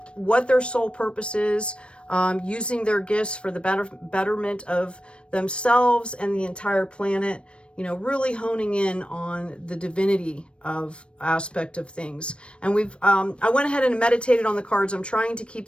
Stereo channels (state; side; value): late; right; 0.058 ms